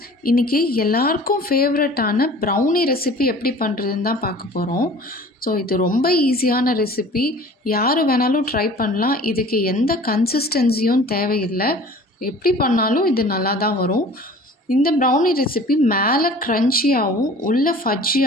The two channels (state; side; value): normal; both; correlation 0.45